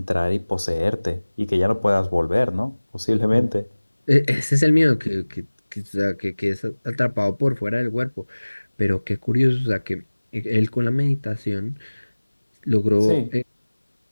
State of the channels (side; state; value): both; inverted; correlation -1.00